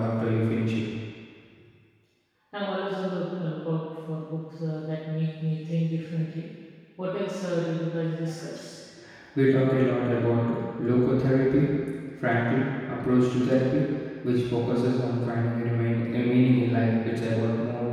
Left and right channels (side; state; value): both; identical; correlation 1.00